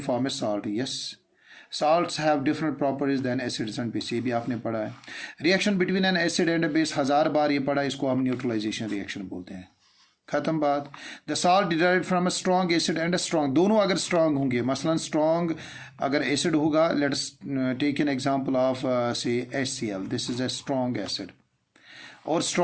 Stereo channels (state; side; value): identical; both; correlation 1.00